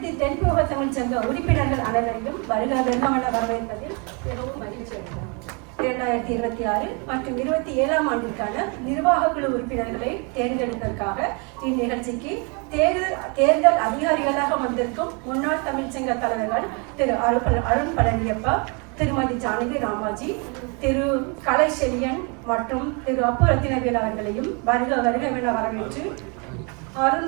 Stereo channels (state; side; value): quieter; left; 33.4 dB